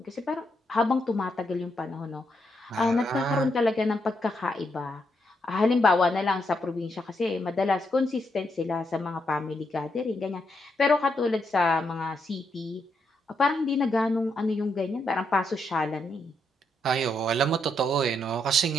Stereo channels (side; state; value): both; normal; correlation 0.79